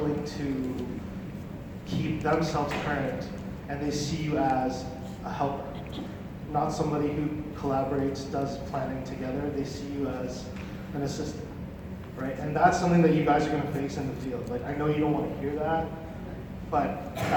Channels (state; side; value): identical; both; correlation 1.00